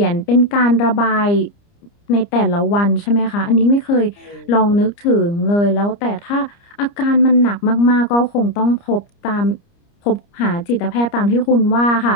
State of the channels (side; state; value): right; late; 30 ms